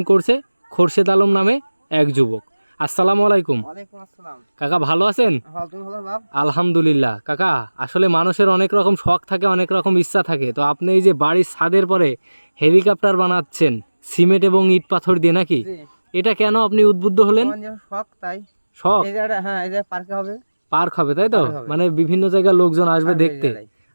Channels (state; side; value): inverted; both; correlation -1.00